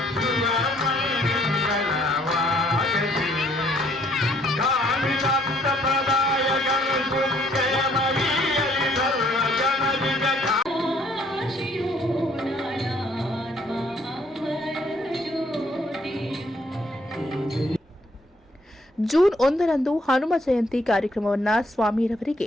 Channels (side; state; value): both; normal; correlation 0.64